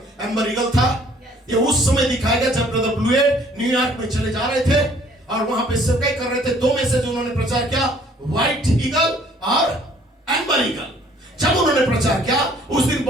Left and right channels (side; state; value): both; normal; correlation 0.59